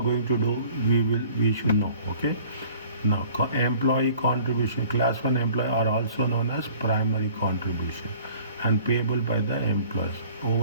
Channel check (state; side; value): inverted; both; correlation -0.51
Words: to do? We should know. Okay. Now, employee contribution, class 1 employee are also known as primary contribution and payable by the employees